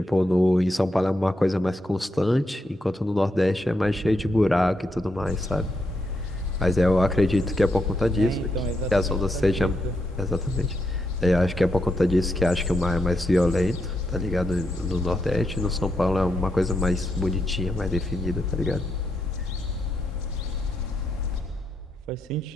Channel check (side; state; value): both; normal; correlation 0.82